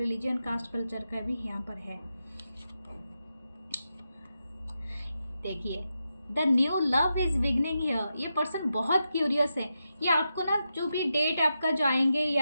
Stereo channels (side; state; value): both; inverted; correlation -0.87